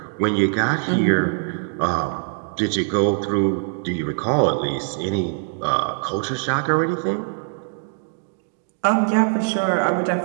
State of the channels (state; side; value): silent; left; digital silence